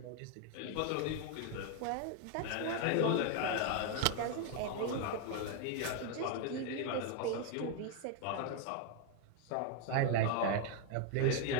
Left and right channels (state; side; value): different; both; correlation 0.01